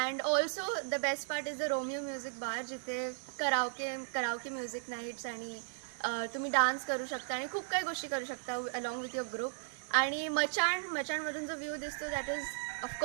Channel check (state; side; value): silent; left; digital silence